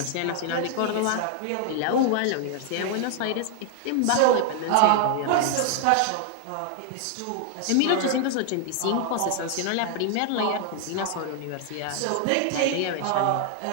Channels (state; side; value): different; both; correlation 0.00